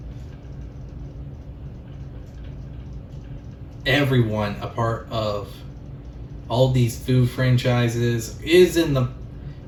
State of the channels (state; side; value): identical; both; correlation 1.00